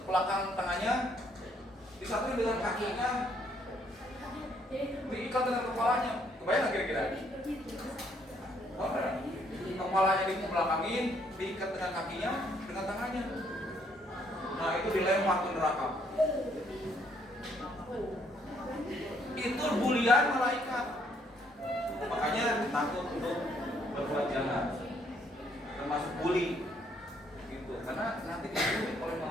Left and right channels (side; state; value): both; normal; correlation 0.69